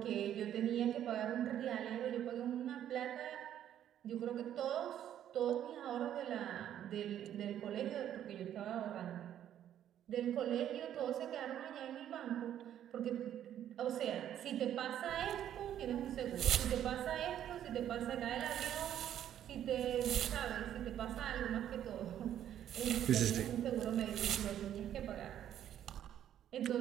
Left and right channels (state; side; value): quieter; left; 10.7 dB